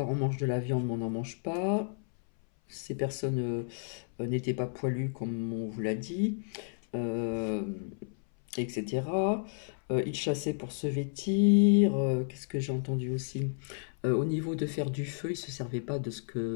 on mange de la viande, mais on n'en mange pas. Ces personnes n'étaient pas poilues comme on vous l'a dit, euh, etc. Ils chassaient pour se vêtir. Qu'est-ce que j'ai entendu aussi? Au niveau de faire du feu, ils se servaient pas de ce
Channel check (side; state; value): right; silent; 57 dB below the other